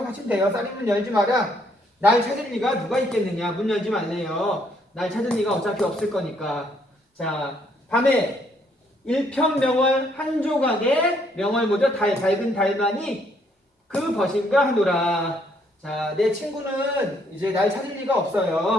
돼요. 쌀인문 열지 마라. 날 찾을 리가 누가 있겠느냐. 문 열지 말래요. 날 찾을 리가 어차피 없을 거니까. 자, 밤에 일편명월 한 조각에 명월 뭐죠? 밝은 달만이 그 벗인가 하노라. 자, 내 친구는 이제 날 찾을 리가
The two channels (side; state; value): both; normal; correlation 0.69